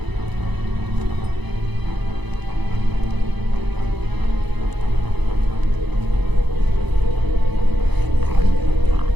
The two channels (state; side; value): late; left; 0.99 ms